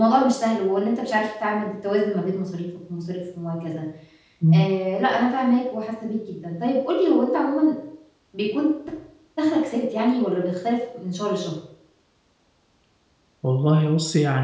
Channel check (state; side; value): identical; both; correlation 1.00